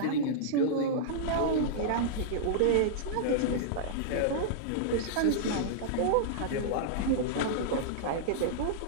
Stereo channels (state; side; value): different; both; correlation -0.02